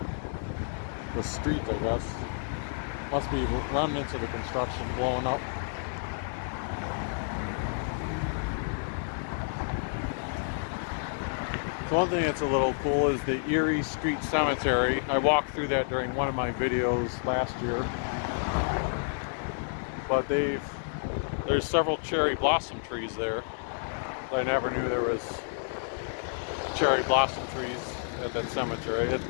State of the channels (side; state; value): right; silent; digital silence